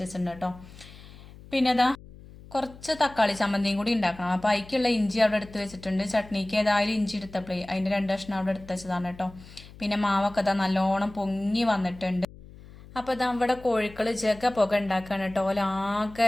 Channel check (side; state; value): left; noise; hum, 19 dB below the sound